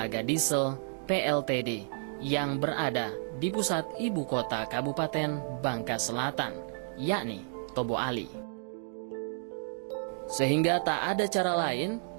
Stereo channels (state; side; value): silent; left; digital silence